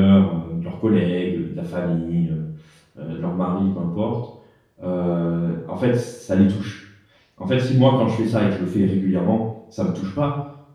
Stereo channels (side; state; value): both; identical; correlation 1.00